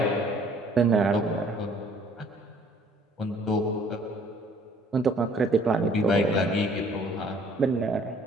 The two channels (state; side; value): normal; both; correlation 0.58